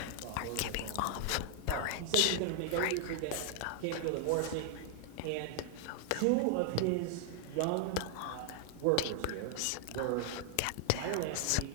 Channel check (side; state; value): both; different; correlation 0.00